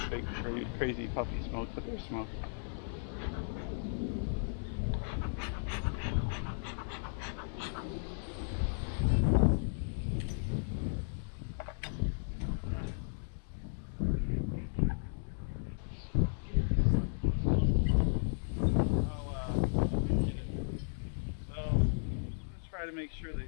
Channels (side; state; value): right; silent; digital silence